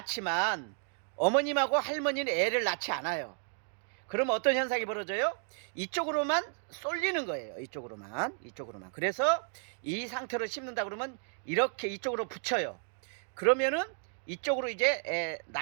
어머님하고 할머니는 애를 낳지 않아요. 그러면 어떤 현상이 벌어져요? 이쪽으로만 쏠리는 거예요. 이쪽으로만. 그래서 이 상태로 심는다 그러면 이렇게 이쪽으로 붙여요. 그러면은 이쪽으로 이제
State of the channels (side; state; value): left; silent; 56 dB below the other